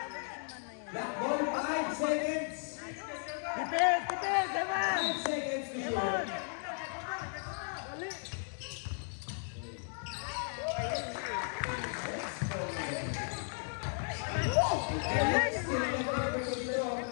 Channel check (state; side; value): silent; right; 54 dB below the other